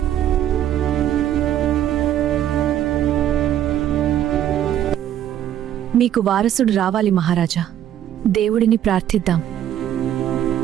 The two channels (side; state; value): left; quieter; 11.1 dB